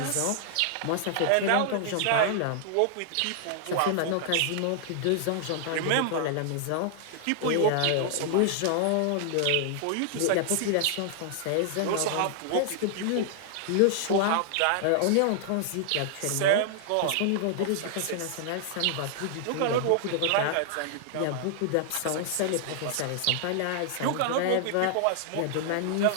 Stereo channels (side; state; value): both; different; correlation -0.01